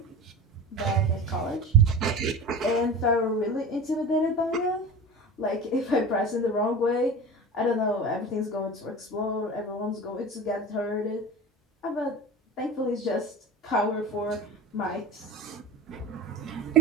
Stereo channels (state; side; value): normal; both; correlation 0.32